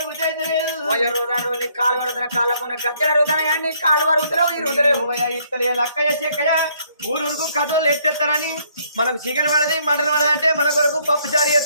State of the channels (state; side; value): inverted; both; correlation -0.67